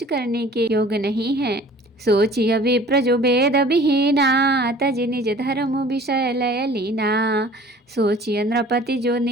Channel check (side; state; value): both; normal; correlation 0.48